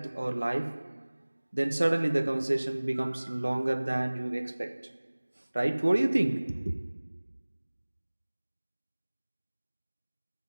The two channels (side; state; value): both; inverted; correlation -1.00